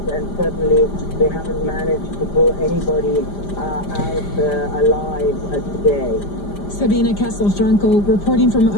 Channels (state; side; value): late; right; 5.0 ms